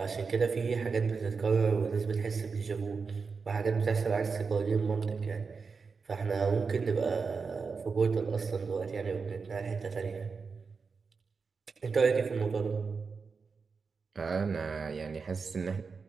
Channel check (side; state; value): left; quieter; 5.0 dB